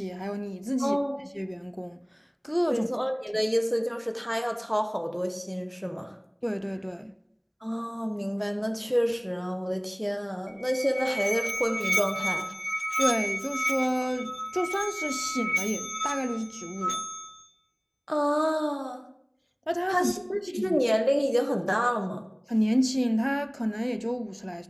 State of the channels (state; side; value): identical; both; correlation 1.00